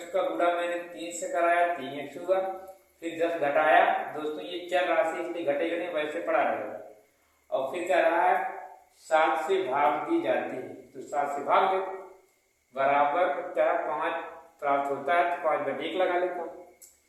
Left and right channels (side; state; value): both; identical; correlation 1.00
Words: का गुणा मैंने 3 से कराया, 3x हुआ। फिर 10 घटाया। दोस्तों ये चर राशि इसलिए घटेगा नहीं, वैसे पड़ा रहेगा। और फिर क्या रहा है, 7 से भाग दी जाती है, तो 7 से भाग दे, बराबर क्या 5 प्राप्त होता है, तो 5 बटे 1 लगा लेता हूँ।